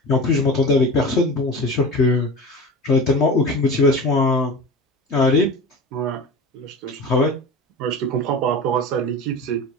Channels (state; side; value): normal; both; correlation 0.32